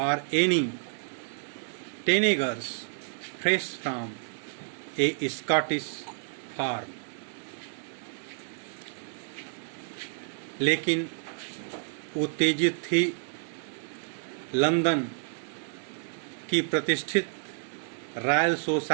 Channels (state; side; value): silent; left; digital silence